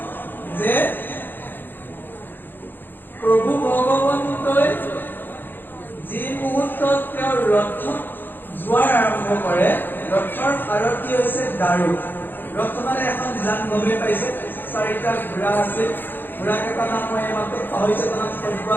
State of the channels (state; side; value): late; right; 0.095 ms